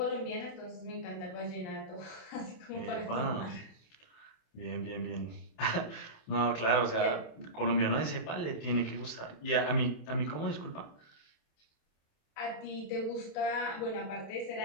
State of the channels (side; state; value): right; late; 27 ms